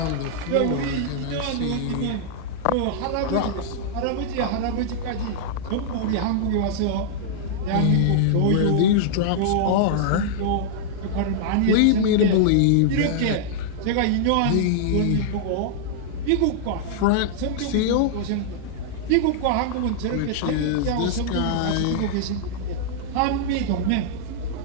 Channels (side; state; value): both; different; correlation -0.01